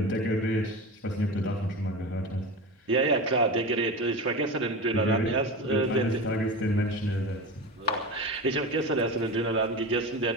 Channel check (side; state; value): both; normal; correlation 0.27